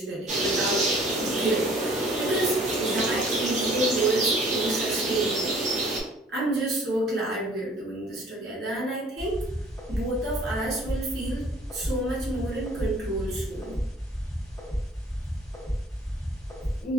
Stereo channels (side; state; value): both; normal; correlation 0.54